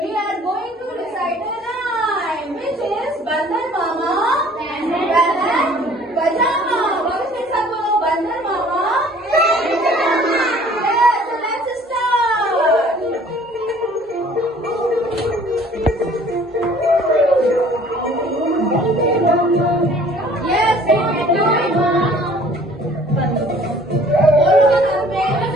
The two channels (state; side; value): normal; both; correlation 0.53